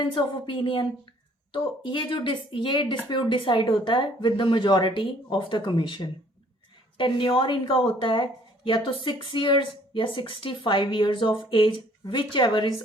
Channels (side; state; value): both; normal; correlation 0.59